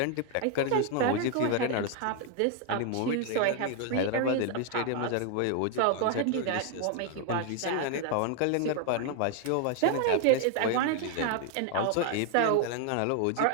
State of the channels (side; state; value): both; different; correlation 0.00